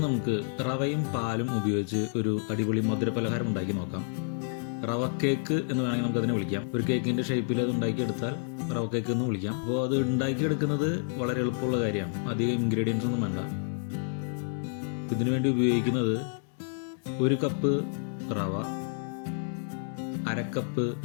നമുക്ക് റവയും പാലും ഉപയോഗിച്ച് ഒരു അടിപൊളി മധുരപലഹാരം ഉണ്ടാക്കി നോക്കാം. റവ കേക്ക് എന്ന് വേണമെങ്കിൽ നമുക്കതിനെ വിളിക്കാം. ഒരു കേക്കിൻ്റെ ഷേപ്പിൽ അത് ഉണ്ടാക്കിയെടുത്താൽ റവ കേക്ക് എന്ന് വിളിക്കാം. അപ്പോൾ അത് ഉണ്ടാക്കിയെടുക്കുന്നത് വളരെ എളുപ്പമുള്ള കാര്യമാണ്. അധികം ഇൻഗ്രീഡിയൻസ് ഒന്നും വേണ്ട. ഇതിനു വേണ്ടി ഉപയോഗിക്കുന്നത് 1 കപ്പ് റവ, 1/2 കപ്പ്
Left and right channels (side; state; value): right; silent; digital silence